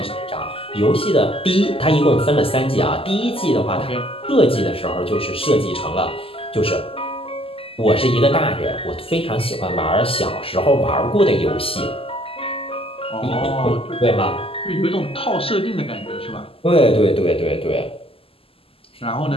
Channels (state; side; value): late; right; 0.27 ms